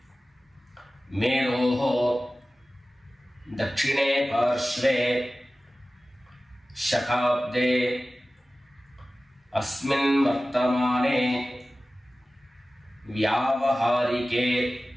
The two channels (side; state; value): both; normal; correlation 0.96